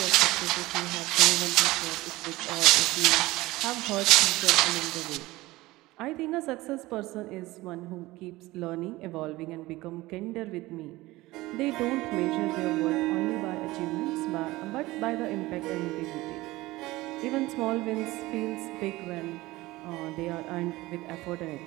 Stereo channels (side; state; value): left; quieter; 19.3 dB